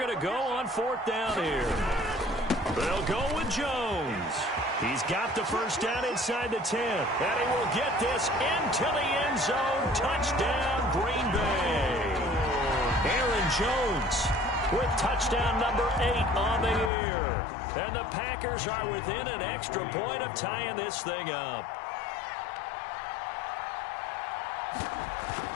to go on 4th down here. They'll go with Jones. He's got the first down inside the 10. And he will get this into the end zone. Touchdown, Green Bay. Aaron Jones with touchdown number 8 on the year. And the Packers are within an extra point of tying this thing up.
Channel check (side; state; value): right; drops out; at 16.9 s